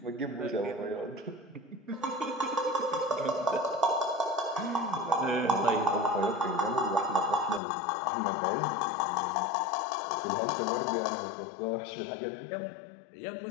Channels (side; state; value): right; drops out; at 7.6 s